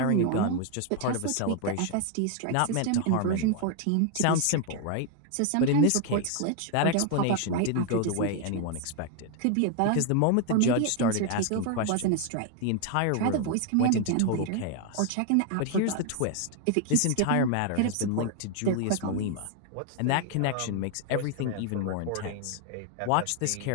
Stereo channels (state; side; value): different; both; correlation 0.01